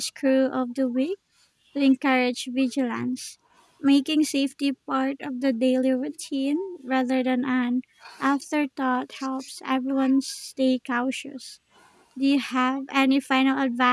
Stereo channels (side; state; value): both; identical; correlation 1.00